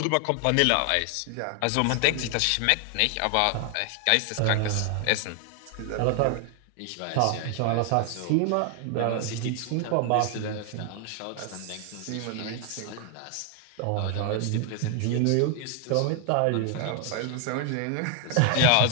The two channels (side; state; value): both; different; correlation 0.00